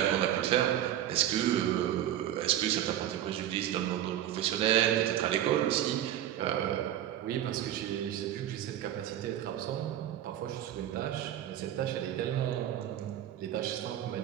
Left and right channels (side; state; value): left; quieter; 11.7 dB